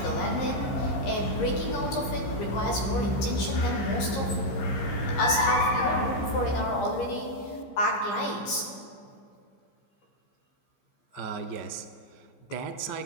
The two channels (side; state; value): right; late; 15 ms